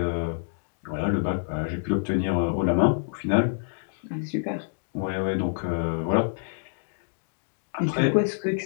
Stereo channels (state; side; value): silent; right; digital silence